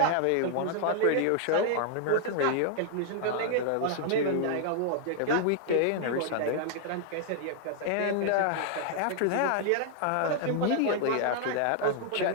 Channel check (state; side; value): different; both; correlation 0.00